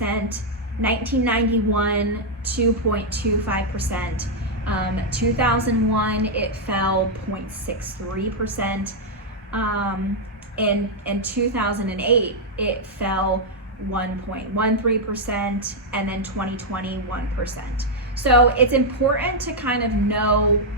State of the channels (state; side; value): normal; both; correlation -0.03